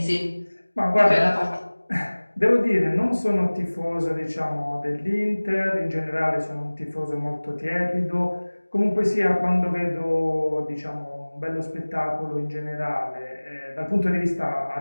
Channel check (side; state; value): both; inverted; correlation -1.00